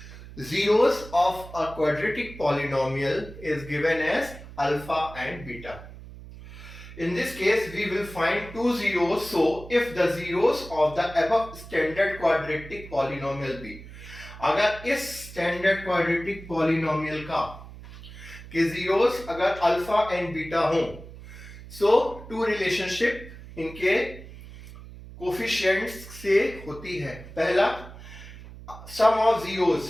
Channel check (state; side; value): noise; right; hum, 15 dB below the sound